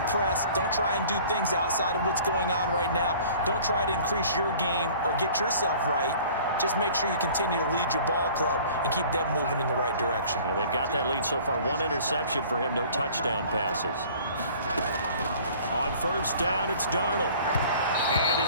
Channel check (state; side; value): inverted; both; correlation -0.49